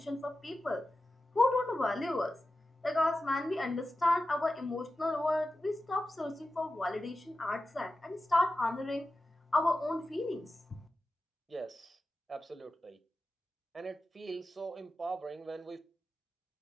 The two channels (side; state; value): both; normal; correlation 0.93